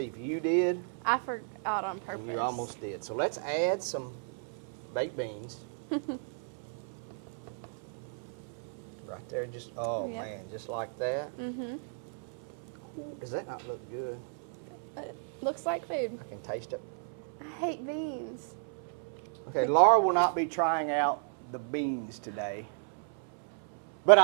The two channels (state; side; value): silent; left; 55 dB below the other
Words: if you did, I forgot on purpose. and you almost did. So let's add some baked beans. Right there, just, oh Yep. man, just like that. Mm-hmm. Does that not look good? Looks like food. I can taste it. I hate beans. Okay, Laura will not be trying out the beans today. But